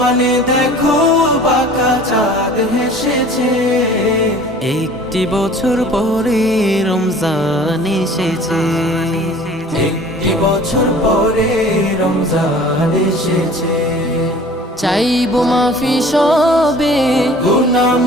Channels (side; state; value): both; normal; correlation 0.47